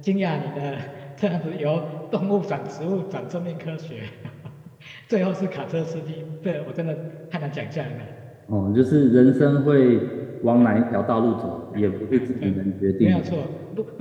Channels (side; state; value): both; identical; correlation 1.00